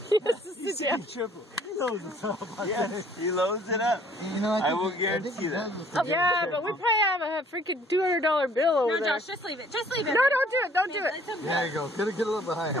He has to sit down. He loads it up. Yes, he loads it up. You know, I will guarantee that. Yeah, but we probably have a freaking $200 bill over No, there. Josh, just leave it. Just leave it. No, don't do it. Don't do it. There you go. Get a little bit higher.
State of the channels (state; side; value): normal; both; correlation 0.57